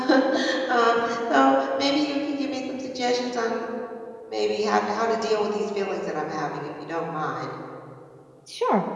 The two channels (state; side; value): identical; both; correlation 1.00